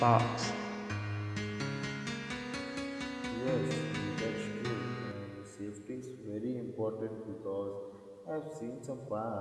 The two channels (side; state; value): both; identical; correlation 1.00